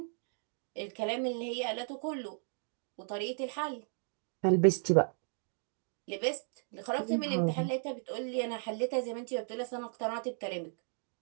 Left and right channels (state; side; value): silent; left; 54 dB below the other